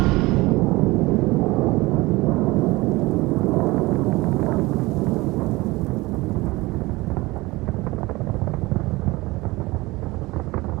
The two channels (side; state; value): left; quieter; 21.3 dB